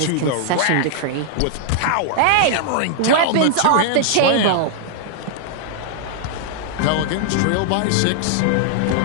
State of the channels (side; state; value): both; different; correlation -0.01